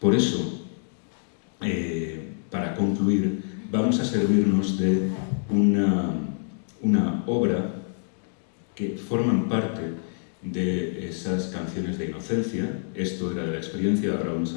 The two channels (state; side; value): silent; right; digital silence